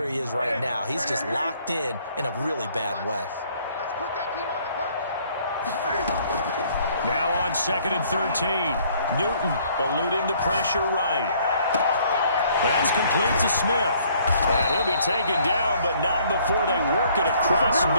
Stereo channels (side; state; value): both; inverted; correlation -0.62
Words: he is right now. He's just locked in a really bad way. Now on 2nd and 13. Newton eluding the pressure right. That's complete to Smith. And he'll be taken down, but not before they work it across